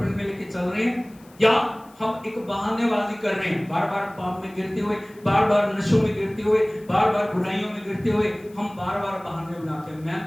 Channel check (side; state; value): left; noise; hiss, 28 dB below the sound